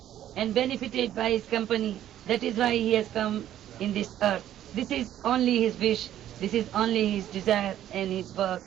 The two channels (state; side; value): quieter; left; 11.8 dB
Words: and benefited by his company. That is why he has come in this earth. This is only his wish, this is only his desire and his work